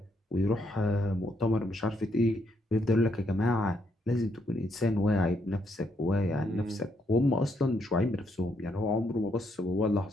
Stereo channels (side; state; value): both; normal; correlation 0.76